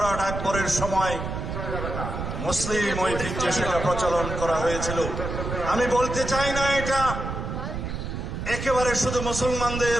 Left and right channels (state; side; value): noise; right; rumble, 5 dB below the sound